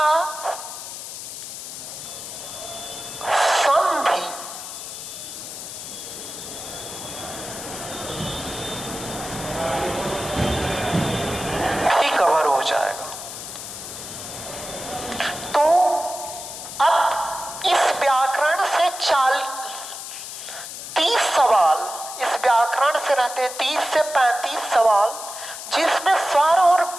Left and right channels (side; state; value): left; noise; hiss, 9 dB below the sound